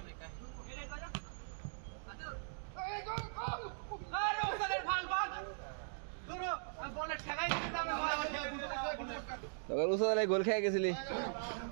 গোল খেয়ে গেছিলি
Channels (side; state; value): left; silent; digital silence